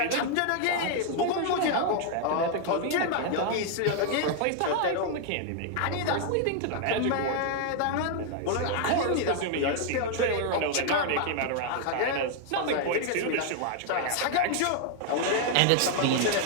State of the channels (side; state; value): both; different; correlation 0.00